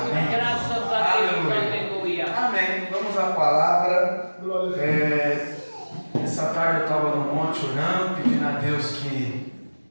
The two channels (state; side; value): inverted; both; correlation -1.00